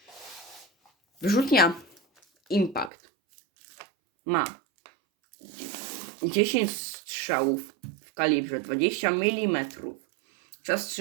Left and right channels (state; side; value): drops out; left; at 2.9 s